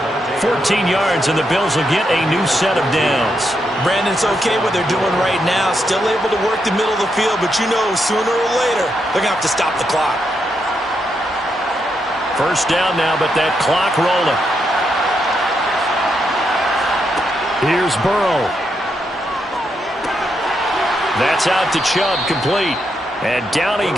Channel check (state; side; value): normal; both; correlation 0.81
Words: 14 yards, and the Bills will get a new set of downs. Brandon, it's okay what they're doing right now. Still able to work the middle of the field, but you know sooner or later they're going to have to stop the clock. 1st down now, but that clock rolling. Here's Burrow. That's out to Chubb, complete. And down he